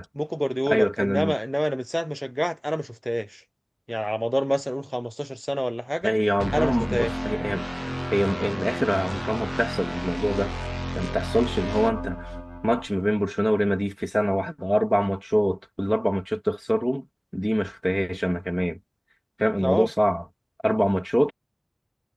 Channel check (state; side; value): identical; both; correlation 1.00